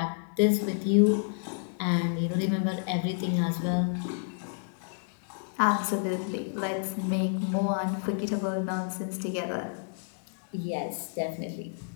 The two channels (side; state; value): right; silent; 58 dB below the other